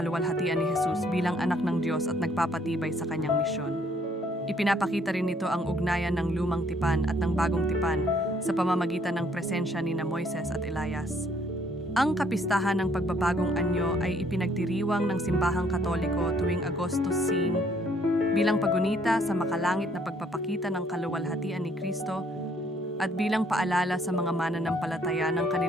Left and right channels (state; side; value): normal; both; correlation 0.64